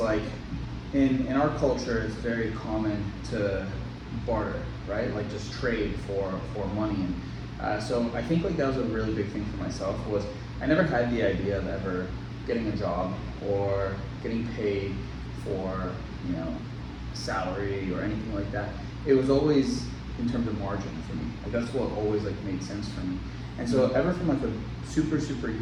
in our culture, it's very common to barter, right? Like just trade for money. And so I think like that was a really big thing for myself. Was I never had the idea of ever getting a job or getting paid for, salary or anything like that. It was always in terms of margin for me. Like that's what always like made sense for me. And so ever from like a super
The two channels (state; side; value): identical; both; correlation 1.00